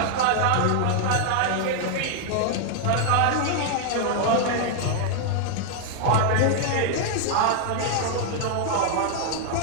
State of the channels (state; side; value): different; both; correlation 0.00